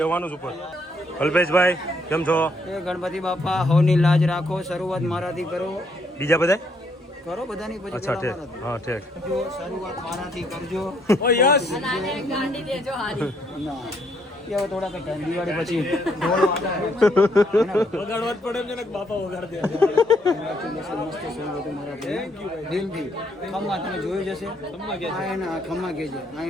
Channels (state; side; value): normal; both; correlation 0.71